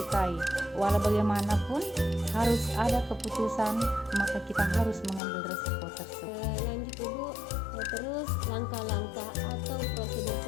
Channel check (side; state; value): right; drops out; at 5.2 s